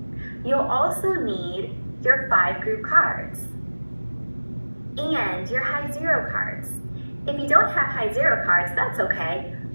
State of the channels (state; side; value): inverted; both; correlation -1.00